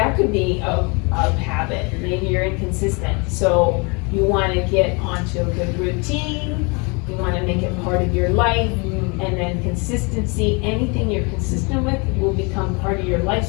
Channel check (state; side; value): quieter; right; 30.9 dB